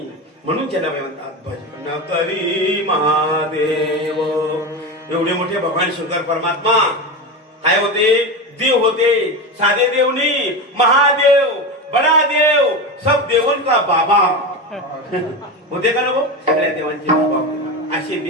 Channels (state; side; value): normal; both; correlation 0.20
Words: म्हणून त्याला म्हणतात भजन करी महादेव. एवढे मोठे भगवान शंकर परमात्मा काय होते? देव होते. साधे देव नाही, महादेव, बडा देव, सब देवन का बाबा होते का नको? सगळ्या देवांचे बाबा होते. असे